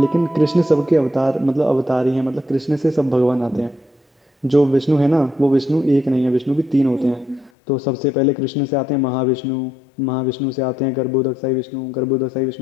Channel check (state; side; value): drops out; right; at 7.5 s